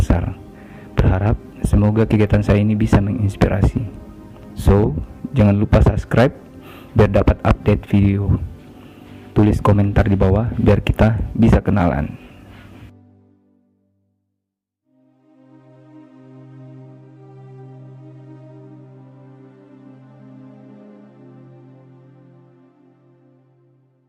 Berharap semoga kegiatan saya ini bisa menginspirasi. So, jangan lupa subscribe biar dapat update video. Tulis komentar di bawah biar kita bisa kenalan.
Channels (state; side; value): identical; both; correlation 1.00